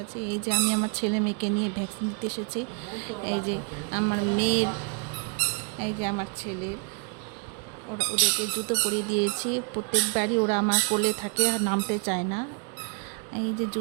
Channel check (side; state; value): left; quieter; 37.6 dB